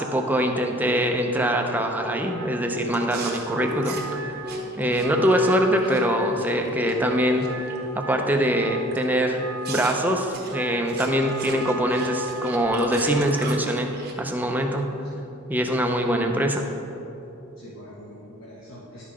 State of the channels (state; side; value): normal; both; correlation 0.54